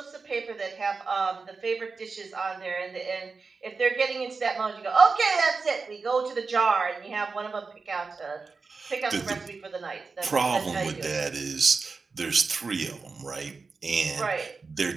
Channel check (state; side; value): quieter; left; 4.5 dB